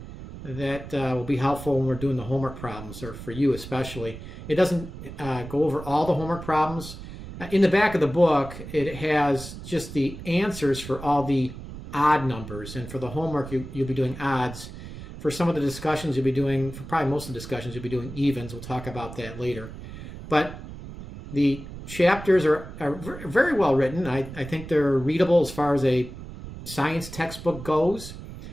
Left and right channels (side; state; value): right; noise; rumble, 12 dB below the sound